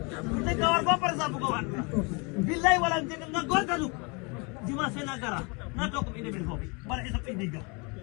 Kawar baper sa bukawan. Bilay walang tinggal ngagor kaluk. Di masa negara, nato ko ini bilho. Para isap indiga.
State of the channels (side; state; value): right; quieter; 30.8 dB